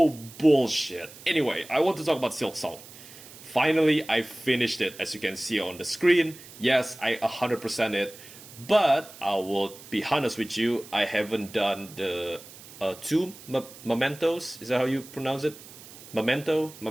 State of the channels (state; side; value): noise; right; hiss, 18 dB below the sound